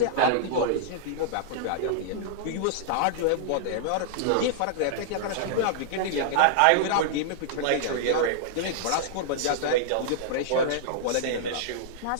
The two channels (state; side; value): different; both; correlation -0.02